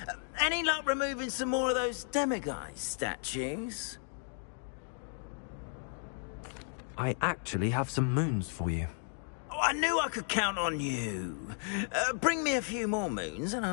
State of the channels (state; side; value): silent; right; 55 dB below the other